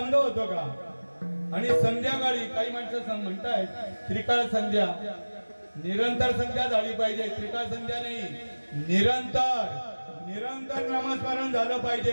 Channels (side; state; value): both; inverted; correlation -1.00